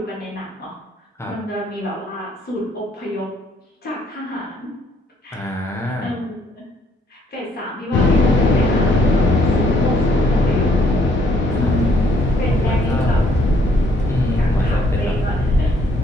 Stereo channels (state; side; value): normal; both; correlation 0.67